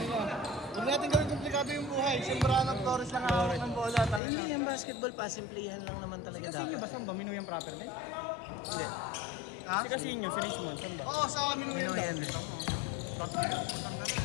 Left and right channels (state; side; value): drops out; right; at 4.2 s